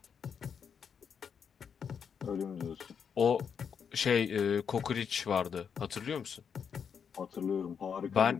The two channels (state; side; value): quieter; right; 7.0 dB